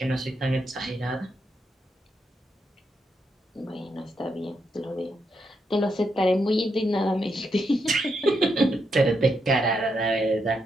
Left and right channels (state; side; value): normal; both; correlation 0.81